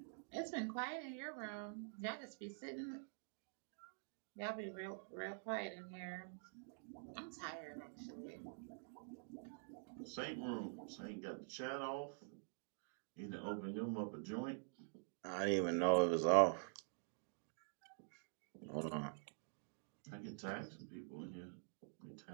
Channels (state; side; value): silent; left; digital silence